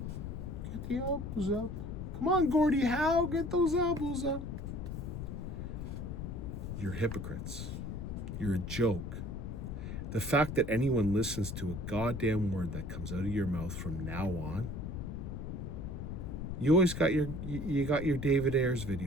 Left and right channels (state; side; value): noise; left; rumble, 6 dB below the sound